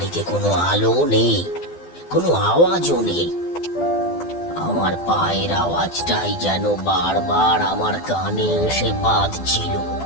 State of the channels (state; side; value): late; right; 12 ms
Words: কোনো আলো নেই, কোনো আওয়াজও নেই। আমার পায়ের আওয়াজটাই যেন বারবার আমার কানে এসে বাজছিল।